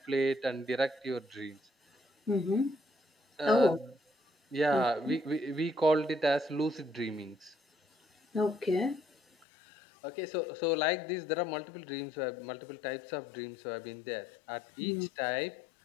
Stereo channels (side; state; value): right; drops out; at 9.5 s